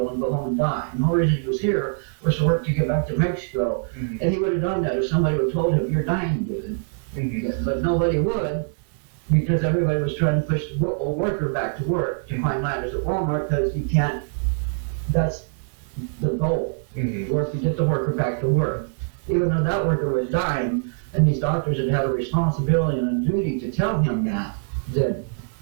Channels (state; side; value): silent; left; digital silence